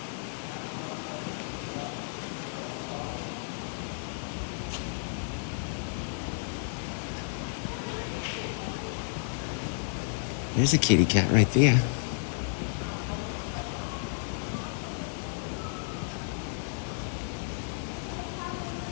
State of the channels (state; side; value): silent; right; digital silence